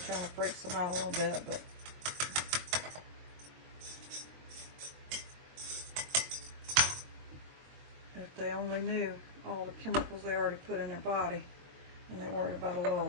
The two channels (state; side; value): late; left; 22 ms